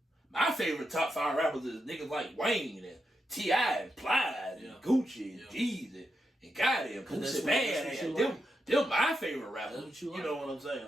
My favorite top 5 rappers is niggas like Wayne and T.I. and Plies and Gucci and Jeezy and goddamn Pussy Bad. Them my favorite rappers. That's what you like. You know what I'm saying?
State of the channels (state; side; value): normal; both; correlation 0.85